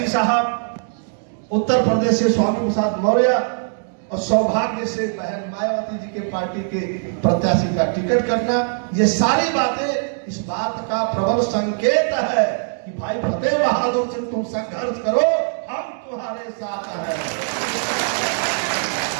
साहब, उत्तर प्रदेश से स्वामी प्रसाद मौर्य और सौभाग्य से बहन मायावती जी के पार्टी के प्रत्याशी का टिकट करना, ये सारी बातें इस बात का प्रबल संकेत है कि भाई फतेह बहादुर सिंह तुम संघर्ष करो, हम तुम्हारे साथ हैं।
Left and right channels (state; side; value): silent; left; digital silence